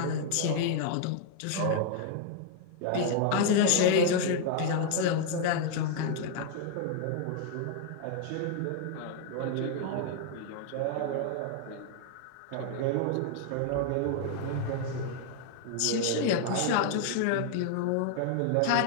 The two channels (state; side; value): different; both; correlation 0.00